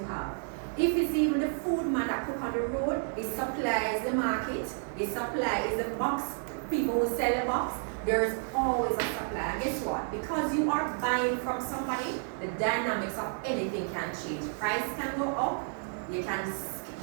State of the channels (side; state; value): left; silent; 57 dB below the other